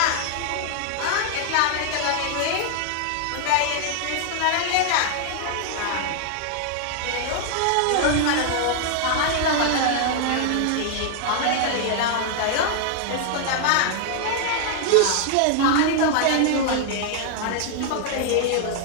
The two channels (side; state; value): both; different; correlation 0.00